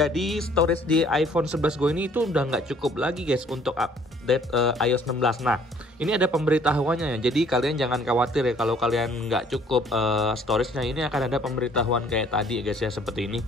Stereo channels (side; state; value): both; normal; correlation 0.59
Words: storage di iPhone 11 gue ini itu udah nggak cukup lagi guys untuk update iOS 16. Nah, ini ada pemberitahuannya ya. Jadi kalian jangan khawatir ya kalau kalian nggak cukup storage-nya. Ini akan ada pemberitahuan kayak tadi guys ya, seperti ini.